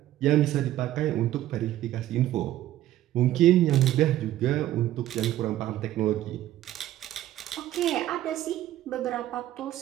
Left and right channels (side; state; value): left; quieter; 13.6 dB